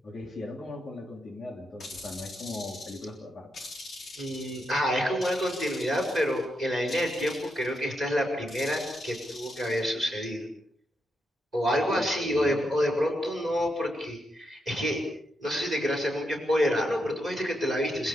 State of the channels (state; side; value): normal; both; correlation 0.82